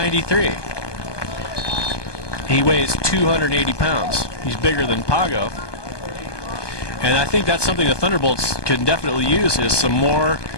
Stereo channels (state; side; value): late; right; 1.2 ms